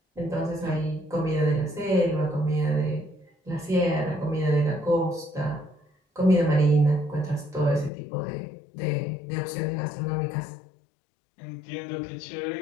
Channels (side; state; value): right; drops out; at 7.9 s